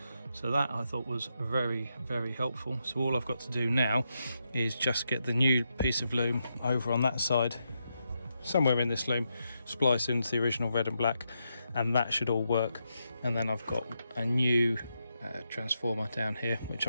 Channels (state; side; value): inverted; both; correlation -0.83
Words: So that I thought was very, very helpful. So all I've got to do now is just get the new piece of loom over on that side, somewhere in this loom, splice into the original red and black, and that should all work. And then I've got a new transformer down here, which